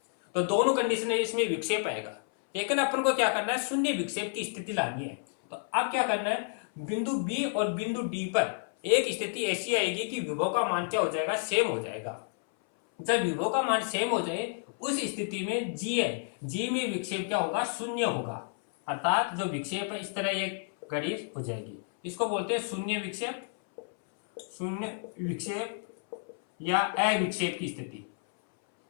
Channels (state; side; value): silent; right; 58 dB below the other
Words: तो दोनों कंडीशन है, इसमें विक्षेप आएगा। लेकिन अपन को क्या करना है, शून्य विक्षेप की स्थिति लानी है। तो अब क्या करना है, बिंदु B और बिंदु D पर एक स्थिति ऐसी आएगी कि विभव का मान क्या हो जाएगा, सेम हो जाएगा। जब विभव का मान सेम हो जाए उस स्थिति में G में विक्षेप क्या होगा, शून्य होगा, अर्थात जो विक्षेप है इस तरह एक घड़ी हो जाएगी। इसको बोलते हैं शून्य विक्षेप या अविक्षेप की स्थिति,